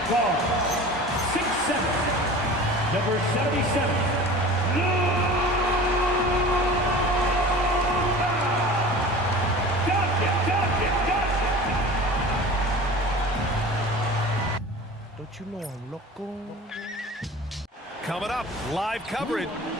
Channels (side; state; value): both; normal; correlation 0.38